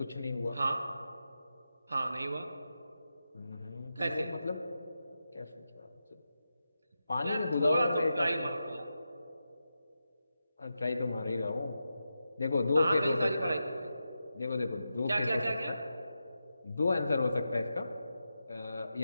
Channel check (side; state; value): both; inverted; correlation -0.89